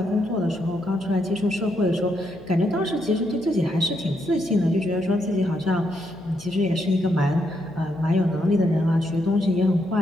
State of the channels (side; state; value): left; noise; hum, 20 dB below the sound